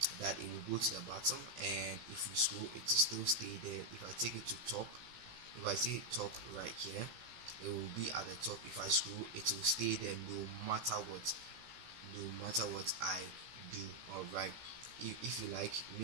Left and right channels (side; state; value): left; late; 15 ms